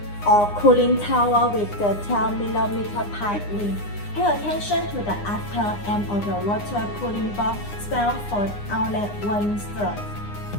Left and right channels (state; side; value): late; right; 9.8 ms